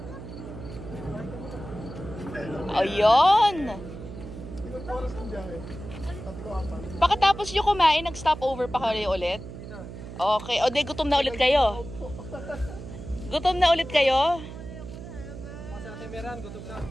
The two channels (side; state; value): right; noise; hum, 11 dB below the sound